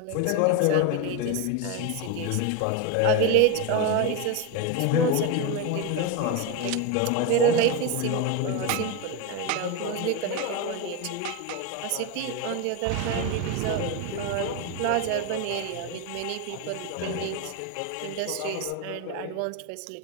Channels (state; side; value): different; both; correlation 0.02